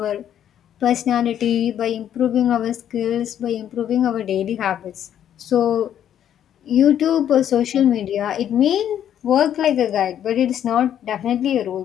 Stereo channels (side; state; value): right; quieter; 10.1 dB